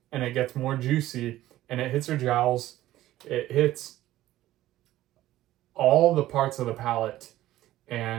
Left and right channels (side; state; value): left; quieter; 14.8 dB